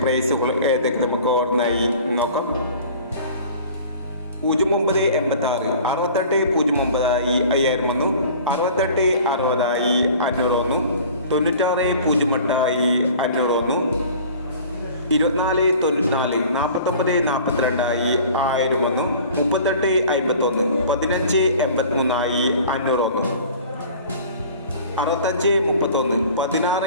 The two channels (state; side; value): inverted; both; correlation -0.45